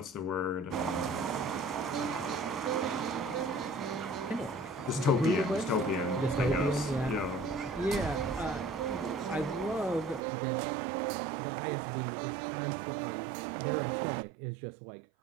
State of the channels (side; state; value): left; drops out; at 10.2 s